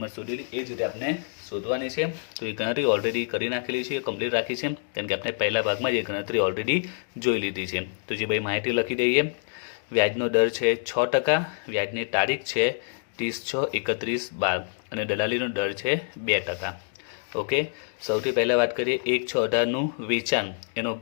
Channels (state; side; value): silent; right; digital silence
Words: શોધેલી, એ જ રીતે આપણે શોધવાની છે. તો એ ગણતરી ઓલરેડી કરી નાખેલી છે, કમ્પ્લીટ રાખી છે, કેમ કે આપણે પહેલા ભાગમાં જ એ ગણતરી ઓલરેડી જોઈ લીધી છે. તો જે ભાઈ માહિતી લખી દઈએ, વ્યાજનો દર છે 6%, વ્યાજની તારીખ છે 30/6/31/12 અને દલાલીનો દર છે 2%. ઓકે, સૌથી પહેલાં વાત કરીએ 1/6/18નું વેચાણ, એનો